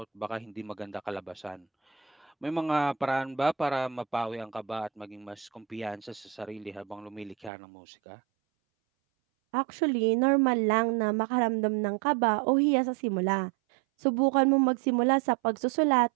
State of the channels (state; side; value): drops out; left; at 7.5 s